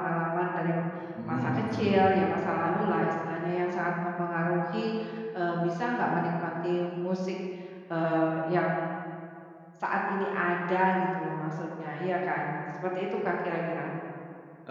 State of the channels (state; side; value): identical; both; correlation 1.00